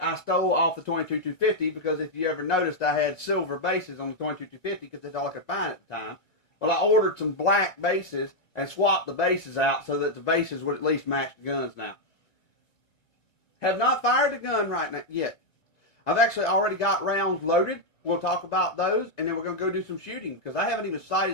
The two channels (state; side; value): late; right; 2.1 ms